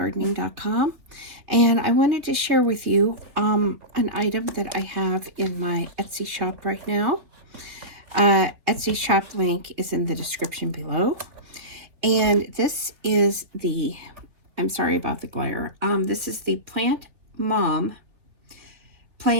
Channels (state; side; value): late; left; 3.5 ms